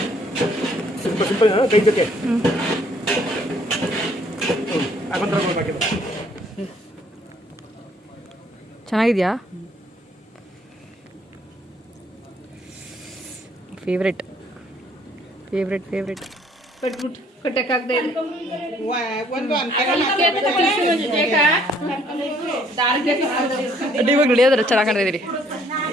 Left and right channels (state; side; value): normal; both; correlation 0.63